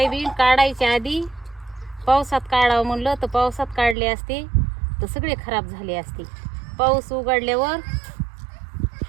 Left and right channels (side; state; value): left; drops out; at 4.0 s